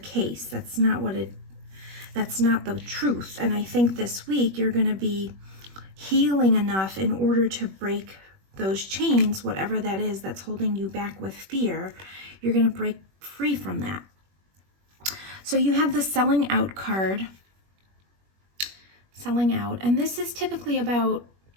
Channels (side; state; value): left; late; 21 ms